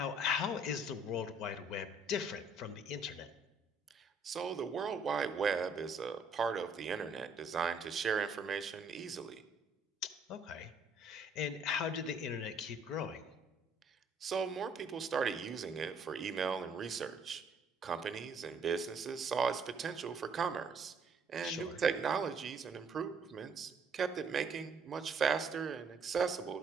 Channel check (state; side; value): quieter; left; 3.0 dB